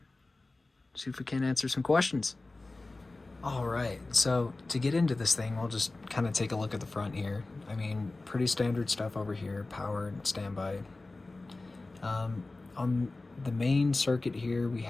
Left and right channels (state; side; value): quieter; right; 3.2 dB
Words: see if we can answer some questions. Alright, so to get into this thing, we'll just kind of take a look at the front here. I mean, pretty standard stuff over here, powered, standby. On the main circuit here, we